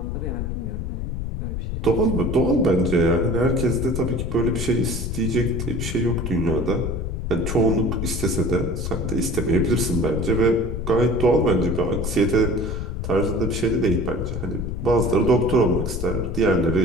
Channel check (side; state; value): left; noise; rumble, 4 dB below the sound